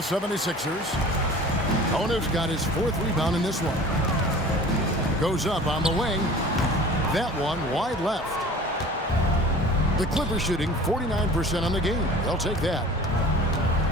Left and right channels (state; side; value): normal; both; correlation 0.43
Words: 76ers. Owner's got his 4th rebound in this one. Goes up on the wing. That one wide left. The Clippers shooting 49% on the game. They'll take that.